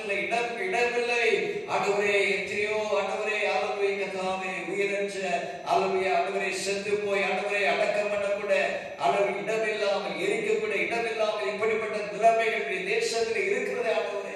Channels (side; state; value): both; identical; correlation 1.00